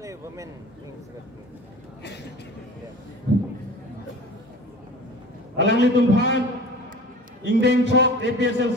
Women Wing Secretary. Alang litumhan Ingdeng Chok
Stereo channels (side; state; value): both; normal; correlation 0.39